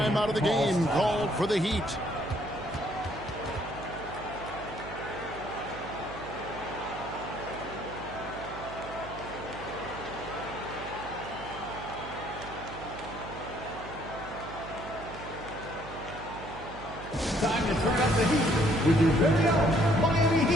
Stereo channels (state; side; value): noise; right; hum, 13 dB below the sound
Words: out of the game called for the Heat. Time to turn up the heat with your very own Miami